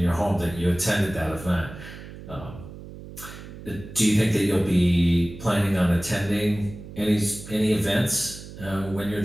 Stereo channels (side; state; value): right; noise; hum, 14 dB below the sound